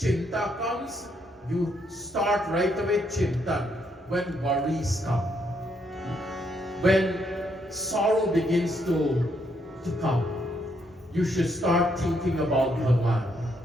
comes, you start right away chintan. When worries come, when sorrow begins to come, you should start thinking about Bhagwan.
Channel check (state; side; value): normal; both; correlation 0.74